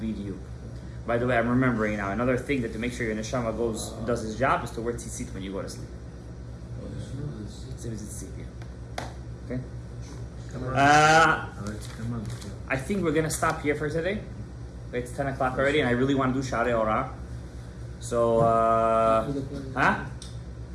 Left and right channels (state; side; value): identical; both; correlation 1.00